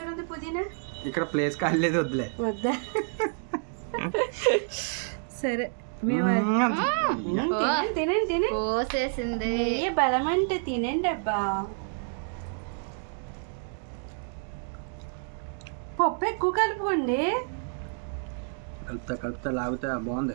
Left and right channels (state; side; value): silent; left; 59 dB below the other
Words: ఉంది, పుదీనా. ఇక్కడ ప్లేస్ కాలేదు, వద్దులే. వద్దా? సరే తినండి తిని పోసేసింది. నెయ్యి బలం అంటే తినండి అబ్బా. పప్పు ఎక్కువ కలుపుకోండి. కలుపుతా లాగుతా.